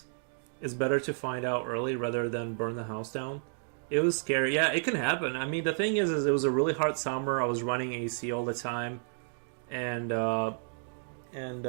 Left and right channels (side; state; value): left; silent; digital silence